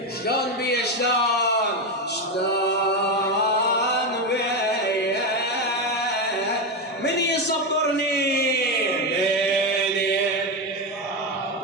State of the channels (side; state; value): both; normal; correlation 0.12